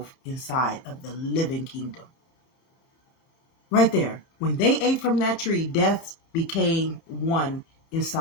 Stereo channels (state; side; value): late; right; 30 ms